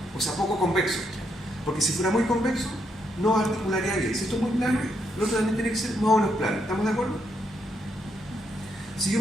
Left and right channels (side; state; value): both; normal; correlation 0.77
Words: o sea, poco convexo. Porque si fuera muy convexo, no articularía bien. Si esto es muy plano, lo otro también tiene que ser más o menos plano. ¿Estamos de acuerdo? Si yo